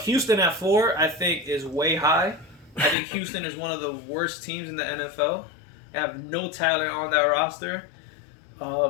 Houston at 4, I think, is way high. I think Houston is one of the worst teams in the NFL. They have no talent on that roster.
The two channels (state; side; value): drops out; right; at 3.0 s